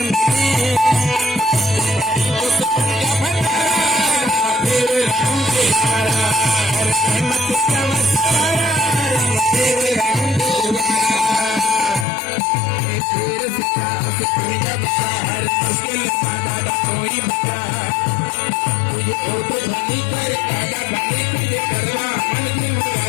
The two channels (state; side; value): drops out; right; at 12.1 s